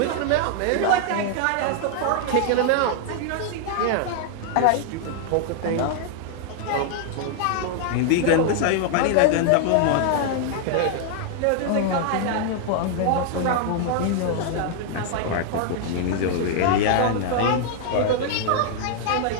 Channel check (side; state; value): both; different; correlation 0.00